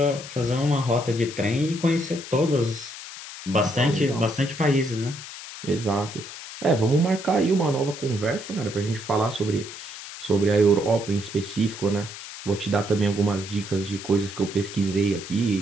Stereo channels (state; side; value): noise; left; hiss, 12 dB below the sound